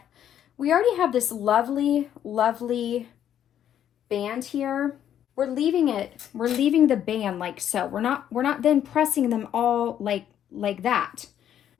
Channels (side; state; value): right; quieter; 10.2 dB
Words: we already have this lovely, lovely band here. We're leaving the band like so. We're not then pressing them all like that.